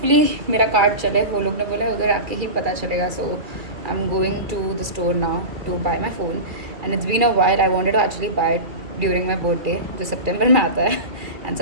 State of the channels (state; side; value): late; left; 2.2 ms